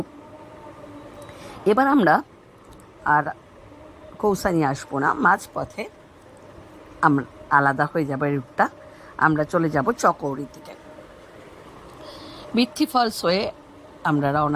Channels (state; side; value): identical; both; correlation 1.00